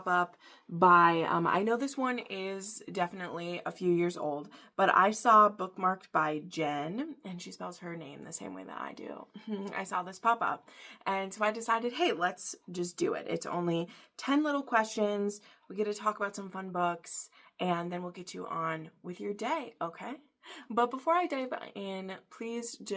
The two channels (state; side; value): identical; both; correlation 1.00